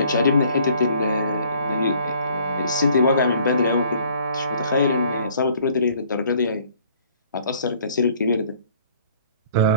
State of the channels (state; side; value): inverted; both; correlation -0.58